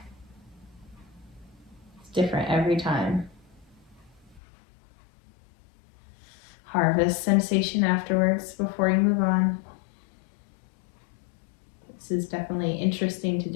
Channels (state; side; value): drops out; right; at 4.4 s